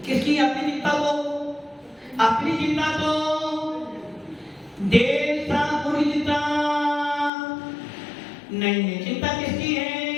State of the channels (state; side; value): drops out; right; at 7.3 s